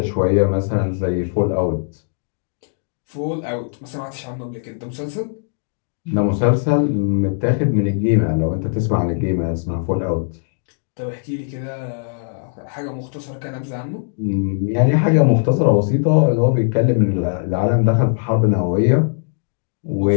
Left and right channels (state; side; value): silent; right; digital silence